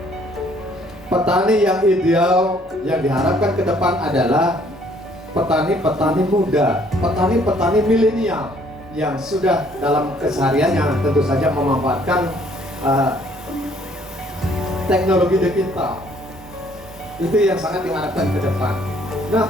Petani yang ideal yang diharapkan ke depan adalah petani-petani muda, petani-petani milenial yang sudah dalam kesehariannya tentu saja memanfaatkan teknologi digital. Itu yang sangat diharapkan ke depan. Nah,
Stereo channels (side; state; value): both; normal; correlation 0.62